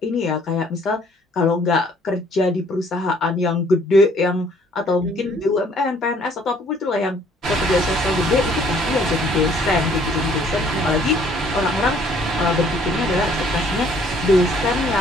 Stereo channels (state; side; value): normal; both; correlation 0.61